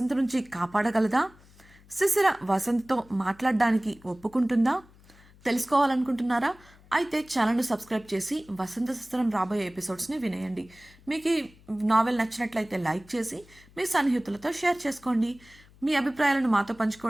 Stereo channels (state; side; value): noise; left; hum, 26 dB below the sound